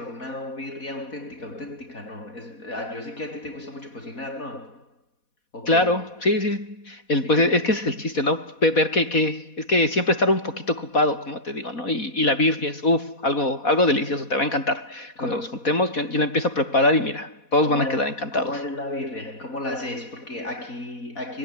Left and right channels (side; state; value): right; late; 4.1 ms